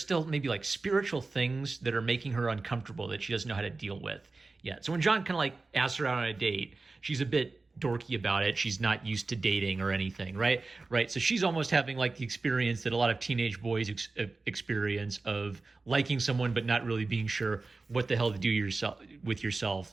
maybe like spiritual things that are making her uncomfortable that she doesn't know how to deal with yet. So when John kind of like asks her out on a date, she's a bit dorky about it. She's not used to dating or anything, right? Right. So she's almost having like the experience that a lot of teenage boys experience of liking someone but not really being sure what the hell to do with yourself.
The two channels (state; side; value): quieter; left; 3.7 dB